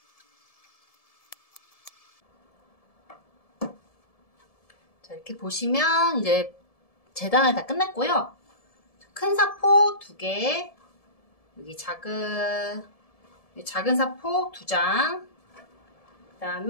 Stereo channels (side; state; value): right; late; 1.7 ms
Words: 자, 이렇게 보시면 이제 재단을 다 끝냈고요. 큰 사포 2개, 여기 작은 사포 2장, 그